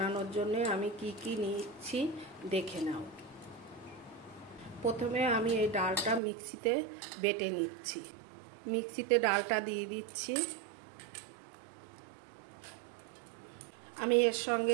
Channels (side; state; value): left; drops out; at 6.2 s